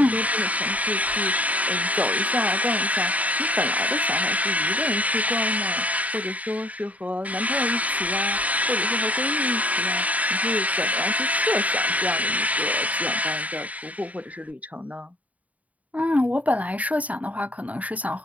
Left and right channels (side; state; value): left; late; 0.071 ms